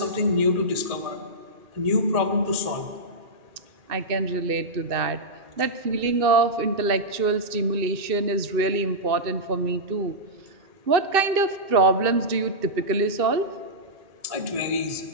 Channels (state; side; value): late; left; 2.6 ms